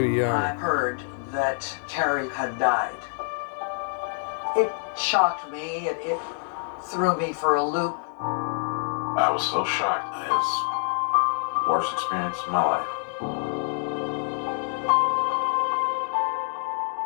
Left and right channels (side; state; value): right; silent; digital silence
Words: young. I heard that Carrie had died. It shocked me. It threw me for a loop. I was so shocked. It was the worst experience of my life.